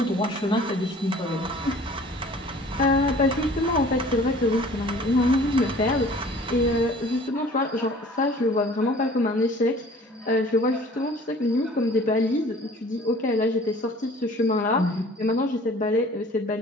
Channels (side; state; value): both; normal; correlation 0.49